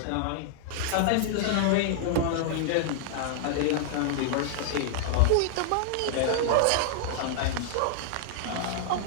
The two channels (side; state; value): both; different; correlation -0.01